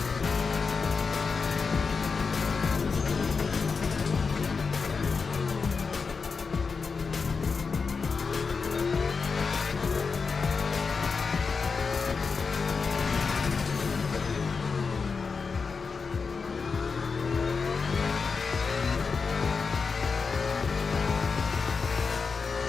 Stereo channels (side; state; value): right; quieter; 5.0 dB